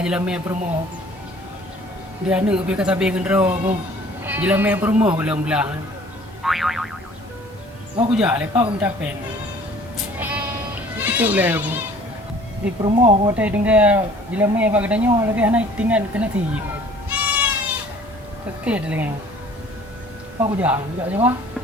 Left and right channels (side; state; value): both; normal; correlation 0.52